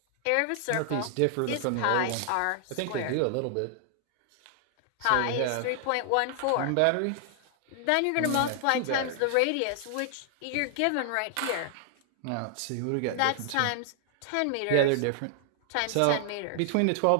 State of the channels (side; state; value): both; different; correlation 0.00